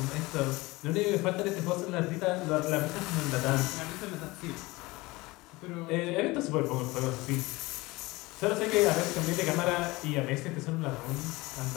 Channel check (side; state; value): right; quieter; 21.8 dB